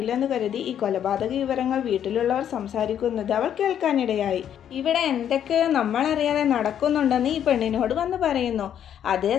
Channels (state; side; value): quieter; right; 9.6 dB